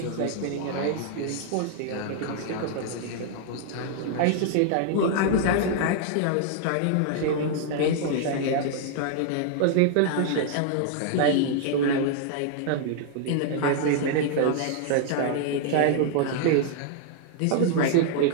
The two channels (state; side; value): different; both; correlation -0.01